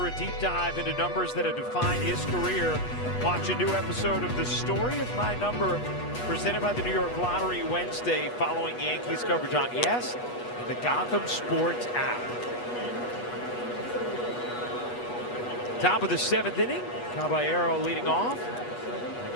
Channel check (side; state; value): right; late; 8.2 ms